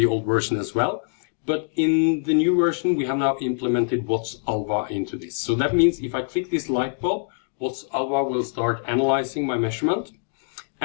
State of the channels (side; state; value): right; silent; digital silence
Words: old version as well. But in the new version, we have now implemented WATS Alva into this. So that means if I click this light bulb, WATS Alva will start analyzing my measurement,